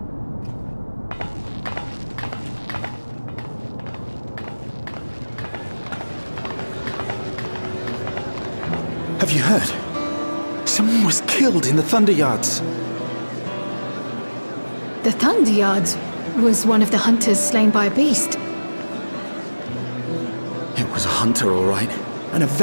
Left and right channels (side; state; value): both; inverted; correlation -1.00